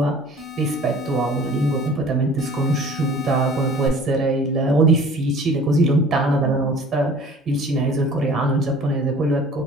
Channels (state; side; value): normal; both; correlation 0.47